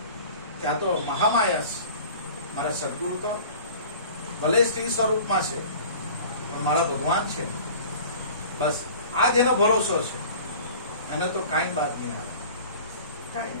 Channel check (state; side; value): inverted; both; correlation -0.44